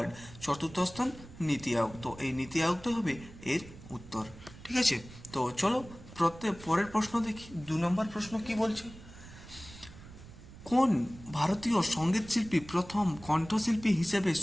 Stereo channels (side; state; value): right; noise; rumble, 17 dB below the sound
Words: চতুর্থ স্থান নীতি আয়োগ। তো এই নীতি আয়োগটা হবে এর উত্তর। ঠিক আছে, তো চলো পরের প্রশ্ন দেখি। 2 নম্বর প্রশ্ন কি বলছে? কোন ভারতীয় সঙ্গীতশিল্পী প্রথম কণ্ঠশিল্পী হিসেবে